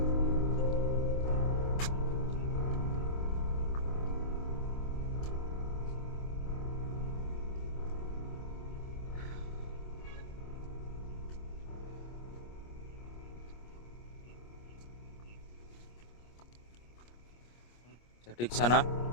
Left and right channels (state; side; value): late; right; 25 ms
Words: Jadi ke sana